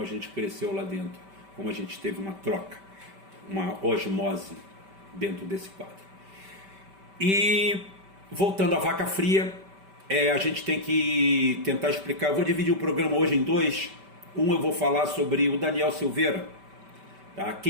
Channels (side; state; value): left; late; 5.1 ms